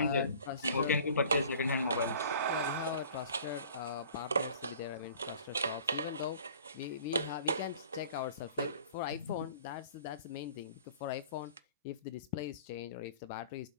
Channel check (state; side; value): inverted; both; correlation -0.48